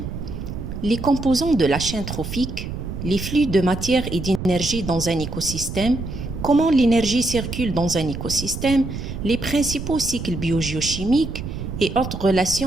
les composants de la chaîne trophique, les flux de matière et d'énergie dans un écosystème, comment l'énergie circule dans un écosystème, les principaux cycles biogéochimiques et autres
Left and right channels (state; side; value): noise; right; rumble, 7 dB below the sound